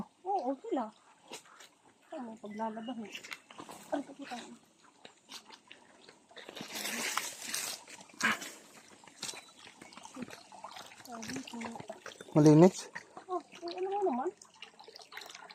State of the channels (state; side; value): identical; both; correlation 1.00